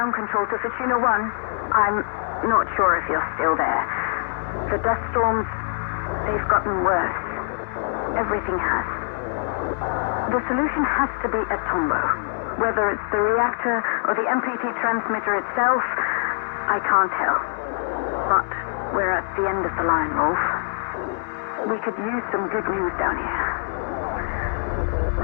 control to Fortuna 1. I'm not sure if you're still there. The dust storms, they've gotten worse. Everything has. The solution has to be at Tombaugh. Whether it's the reactor or the MPT transmitter itself, I can't tell. But we're at the end of the line, Rolf. We could use some good news down here.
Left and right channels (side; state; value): right; silent; digital silence